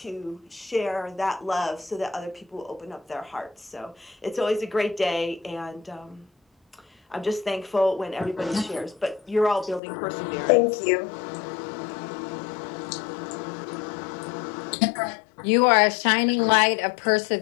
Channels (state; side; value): drops out; right; at 9.8 s